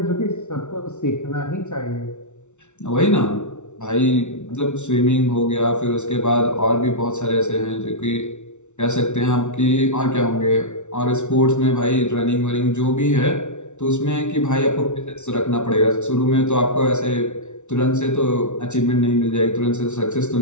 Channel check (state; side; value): late; right; 0.83 ms